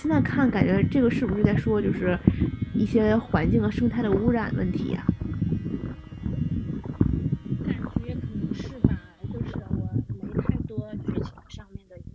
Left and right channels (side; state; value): both; identical; correlation 1.00